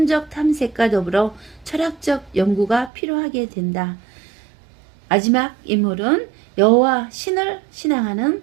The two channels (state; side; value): drops out; left; at 2.9 s